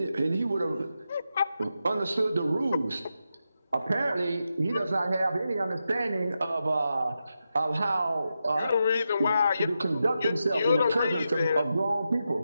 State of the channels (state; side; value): inverted; both; correlation -0.88